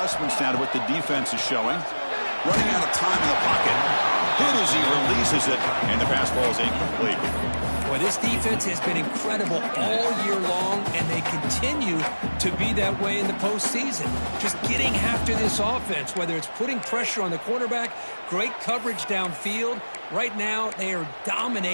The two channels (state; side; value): inverted; both; correlation -1.00